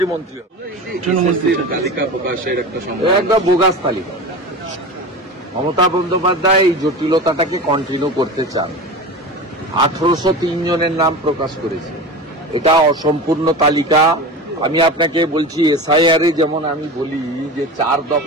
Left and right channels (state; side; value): normal; both; correlation 0.29